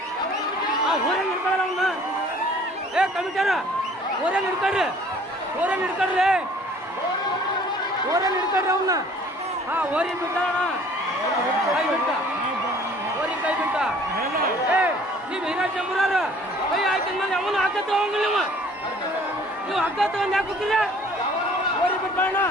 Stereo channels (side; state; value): both; normal; correlation 0.53